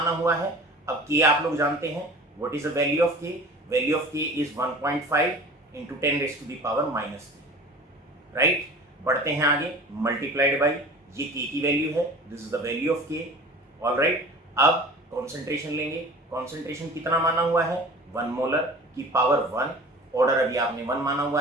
हुआ है, अब के आप लोग जानते हैं what is the value of K, value of K is 1.5 into 10 raise to the power -3, right. बढ़ते हैं आगे, मल्टीप्लाइड बाई ये के की वैल्यू है, this is the value of के, ऑल राइट। अब कॉन्सेंट्रेशन लेंगे, कॉन्सेंट्रेशन कितना माना हुआ है 1 मोलर की पावर 1, ऑर्डर अभी आपने 1 माना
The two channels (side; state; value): both; normal; correlation 0.41